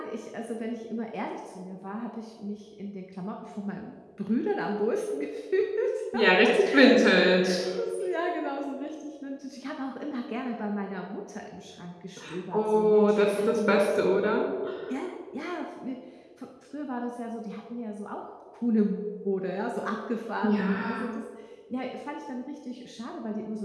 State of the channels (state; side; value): identical; both; correlation 1.00